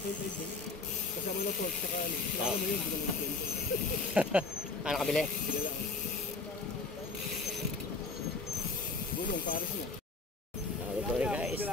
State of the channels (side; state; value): right; quieter; 3.8 dB